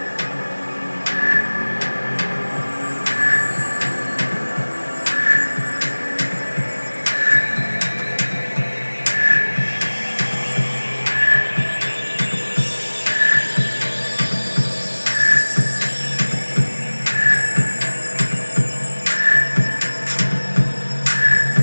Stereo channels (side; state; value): both; inverted; correlation -1.00